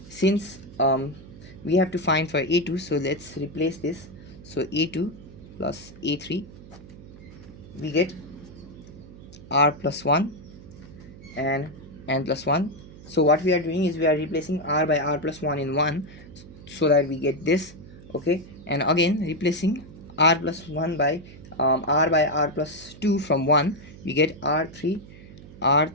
since we have to find for a2, so let's replace this. So a2 plus a3, we get r plus 1 and n plus 1. So what we are doing is we are replacing r by r plus 1 in 1, so that we get this. Okay, and again replacing r plus 1 by r by r plus 2 from 1, we get r3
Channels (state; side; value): noise; right; hum, 18 dB below the sound